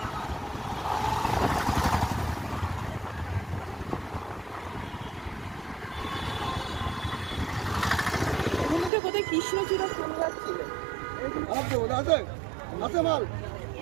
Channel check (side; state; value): left; drops out; at 8.9 s